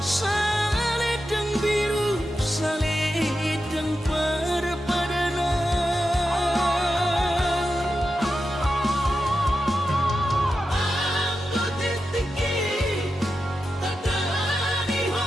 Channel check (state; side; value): normal; both; correlation 0.90